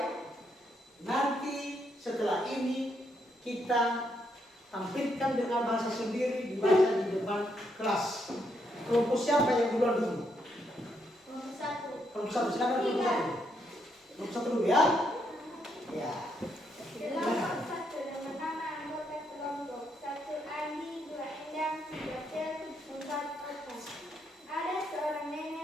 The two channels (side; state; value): both; normal; correlation 0.77